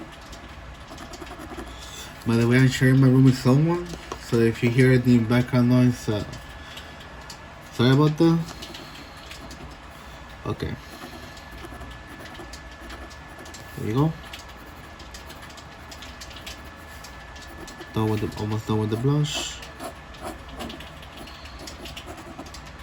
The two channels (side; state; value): both; identical; correlation 1.00